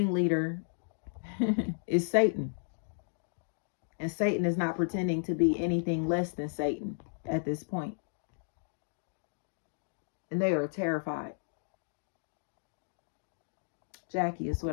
is Satan. And Satan is not pretending to be anything less than Satan at this point. And they are terrified. Jackie is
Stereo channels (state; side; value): silent; right; digital silence